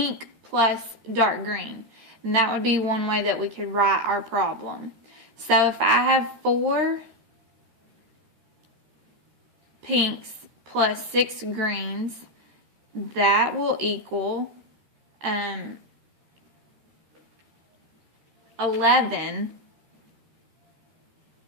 plus dark green. And that would be one way that we could write our problem. So if I have 4 pinks plus 6 greens, that will equal 11.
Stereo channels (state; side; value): late; left; 13 ms